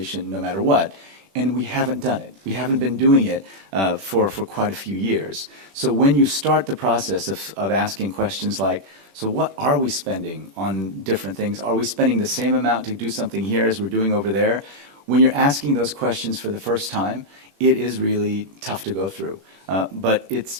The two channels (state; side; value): late; left; 21 ms